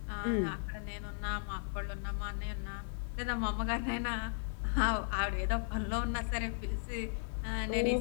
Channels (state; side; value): silent; right; 54 dB below the other